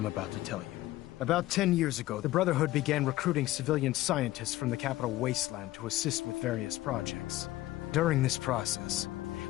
about to tell you. About 10 years ago, the Brotherhood began recruiting civilian scientists from the capital wasteland to assist with various projects. During this process,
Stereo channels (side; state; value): right; quieter; 16.5 dB